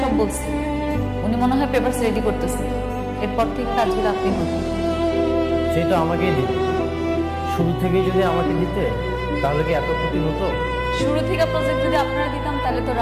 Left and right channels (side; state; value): both; identical; correlation 1.00